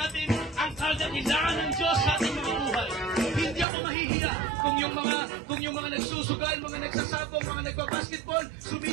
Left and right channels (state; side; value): drops out; left; at 3.7 s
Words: ang kadakilaan ng Diyos sa ating mga buhay. Hindi ako mahihiya kung yung mga nagsusugal, mga nagsasabong, mga nagbabasketball,